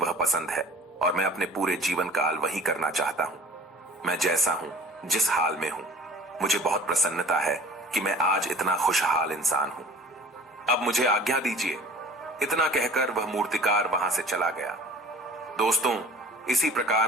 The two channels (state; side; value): normal; both; correlation 0.44